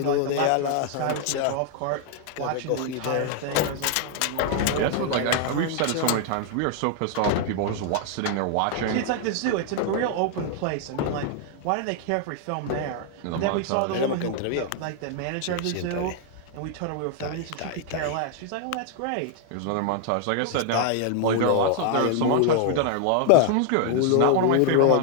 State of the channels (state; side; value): different; both; correlation 0.00